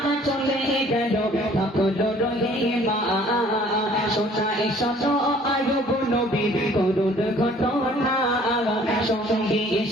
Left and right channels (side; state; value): both; normal; correlation 0.55